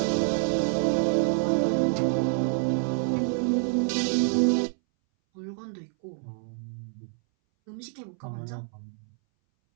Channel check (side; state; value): left; silent; 60 dB below the other